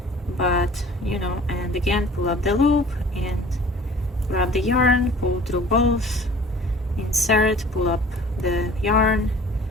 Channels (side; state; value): both; normal; correlation 0.47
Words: but you know, and again pull up the loop and grab the yarn, pull through both, insert, pull up the yarn,